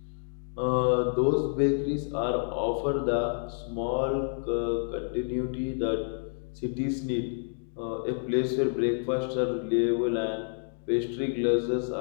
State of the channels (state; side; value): silent; right; digital silence